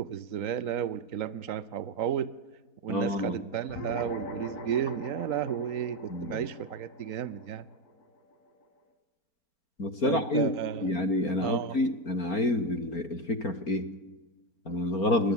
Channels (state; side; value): late; right; 4.3 ms